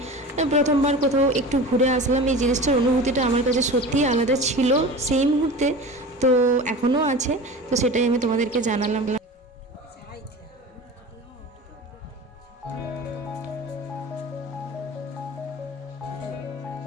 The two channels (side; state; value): both; normal; correlation 0.34